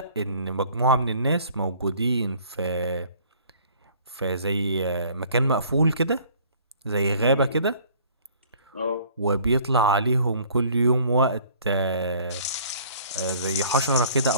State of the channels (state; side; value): inverted; both; correlation -0.54